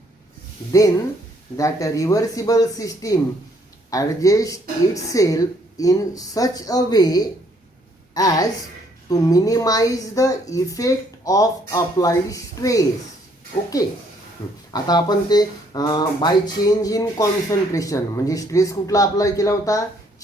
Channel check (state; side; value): normal; both; correlation 0.66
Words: then that reversible system adjusts itself in such a way as to minimize the effect of applied stress. Okay, आता आपण ते by change in concentration म्हणजे stress कुठला apply केला होता?